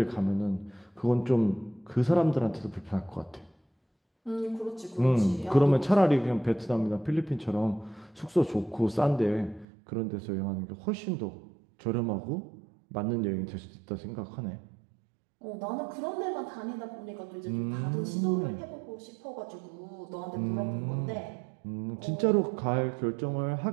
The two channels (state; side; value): drops out; left; at 9.7 s